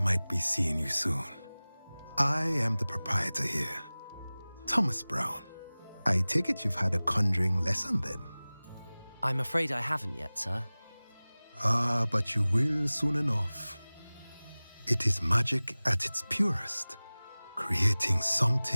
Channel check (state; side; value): inverted; both; correlation -0.99